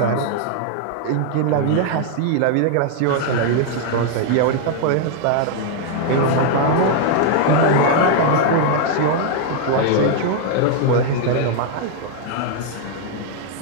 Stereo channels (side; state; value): both; different; correlation 0.00